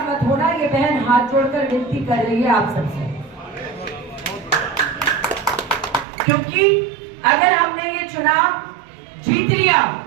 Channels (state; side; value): drops out; left; at 6.1 s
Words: मत होना। ये बहन हाथ जोड़कर विनती कर रही है आप सबसे, क्योंकि अगर हमने ये चुनाव जीत लिया